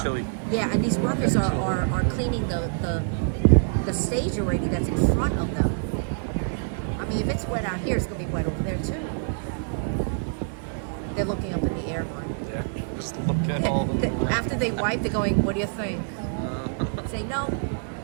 these workers are cleaning the stage already that's in front of them. I mean, if it's wet out here, it's going to be wet over there too. They're looking up in the air, Mark. Yeah, just look at all the... After they wipe, they're going, what do you think? Say, no.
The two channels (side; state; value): left; silent; digital silence